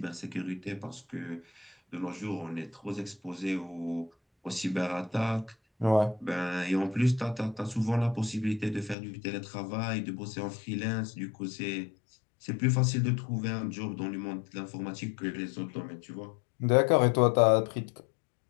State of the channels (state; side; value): drops out; right; at 9.0 s